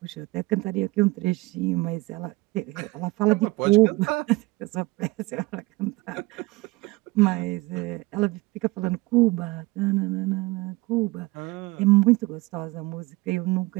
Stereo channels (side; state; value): left; quieter; 22.3 dB